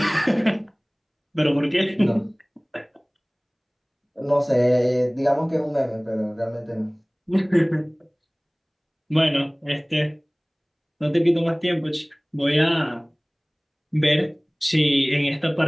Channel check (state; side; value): identical; both; correlation 1.00